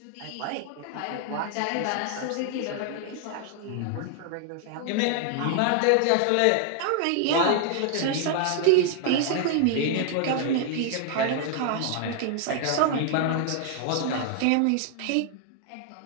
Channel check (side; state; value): both; different; correlation 0.00